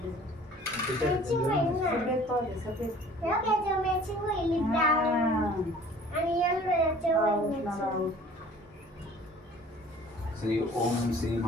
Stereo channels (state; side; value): normal; both; correlation 0.49